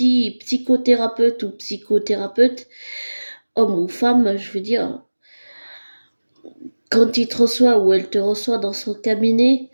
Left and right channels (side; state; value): both; inverted; correlation -1.00